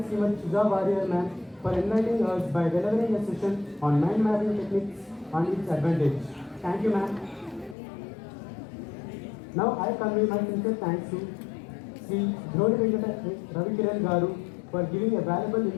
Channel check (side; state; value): right; drops out; at 7.8 s